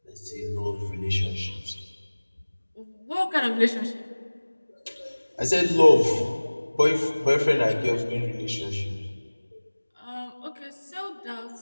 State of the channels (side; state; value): both; inverted; correlation -1.00